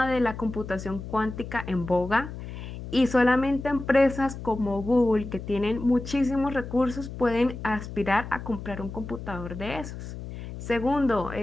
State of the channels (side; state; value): left; noise; hum, 10 dB below the sound